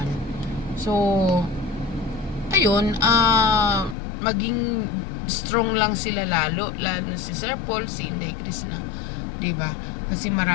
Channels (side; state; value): right; drops out; at 4.0 s